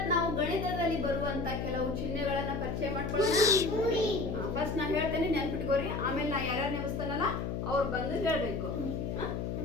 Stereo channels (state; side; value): noise; left; hum, 3 dB below the sound